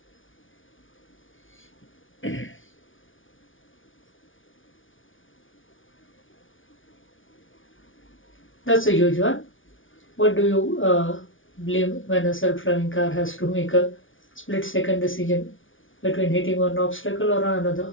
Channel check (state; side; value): late; right; 0.57 ms